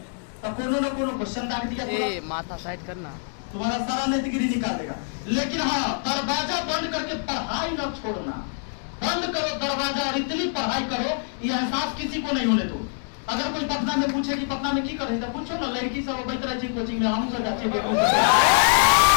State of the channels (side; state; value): right; silent; 62 dB below the other